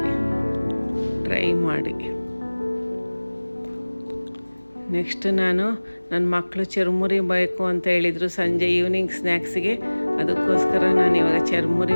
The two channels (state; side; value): inverted; both; correlation -1.00